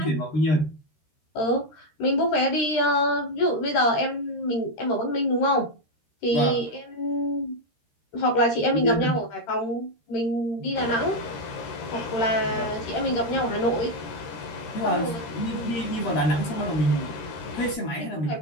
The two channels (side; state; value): right; late; 13 ms